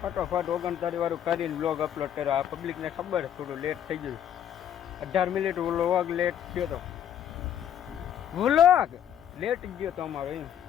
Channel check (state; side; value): quieter; right; 10.0 dB